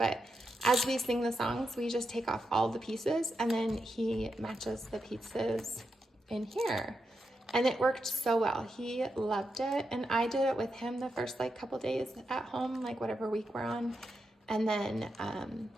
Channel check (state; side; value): normal; both; correlation 0.86